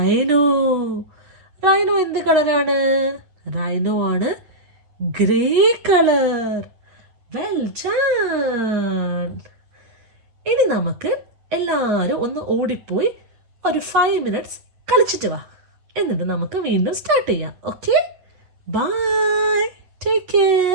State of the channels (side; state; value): left; late; 8.5 ms